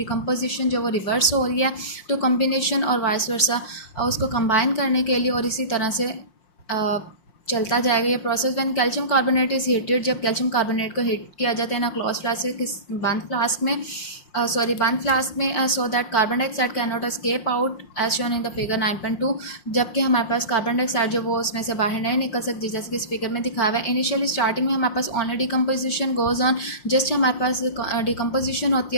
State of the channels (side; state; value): right; late; 5.6 ms